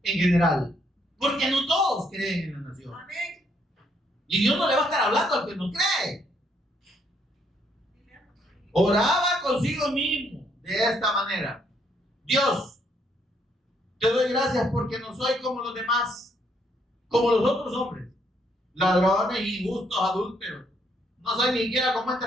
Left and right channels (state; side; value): normal; both; correlation 0.71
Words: en general, porque no todos creen en la nación. Y Dios no le va a estar hablando al que no cree. Oraba consigo mismo de esta manera: Dios, te doy gracias porque no soy como los demás, como los otros hombres, ladrones, injustos, adúlteros. No soy ni siquiera como